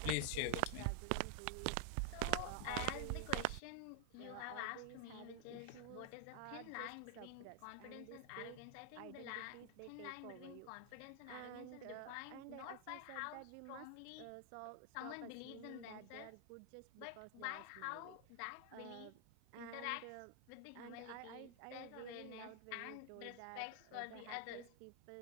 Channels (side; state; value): both; different; correlation 0.00